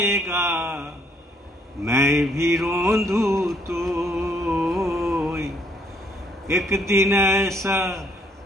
मैं भी रोंदू तो, एक दिन ऐसा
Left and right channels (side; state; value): both; normal; correlation 0.66